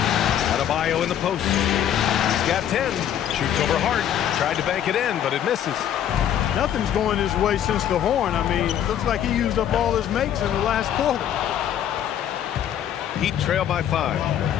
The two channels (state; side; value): quieter; right; 10.1 dB